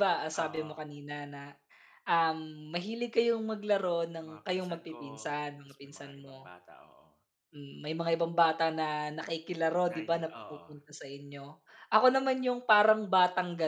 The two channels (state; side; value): identical; both; correlation 1.00